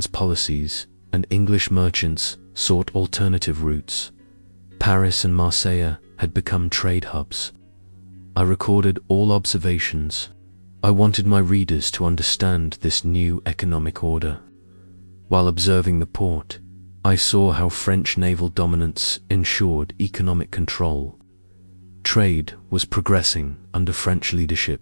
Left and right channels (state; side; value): inverted; both; correlation -1.00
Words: policies, and English merchants sought alternative routes. Paris and Marseille had become trade hubs. I recorded all observations. I wanted my readers to understand this new economic order. While observing the port, I saw how French naval dominance ensured economic control. Trade was progressing under French